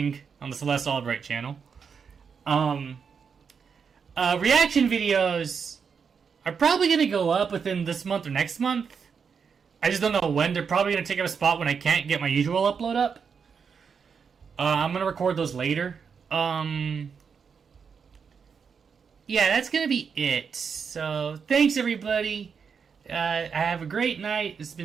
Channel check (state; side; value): quieter; left; 6.2 dB